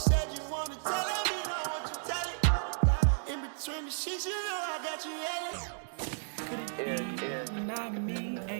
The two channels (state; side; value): silent; left; digital silence